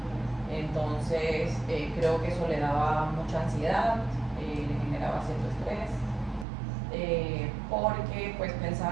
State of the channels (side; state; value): left; drops out; at 6.5 s